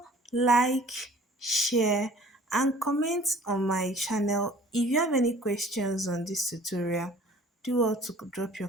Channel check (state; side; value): normal; both; correlation 0.50